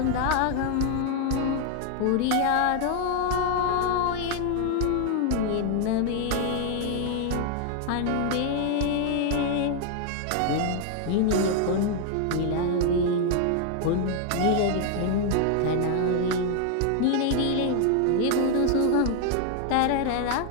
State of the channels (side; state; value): both; different; correlation 0.00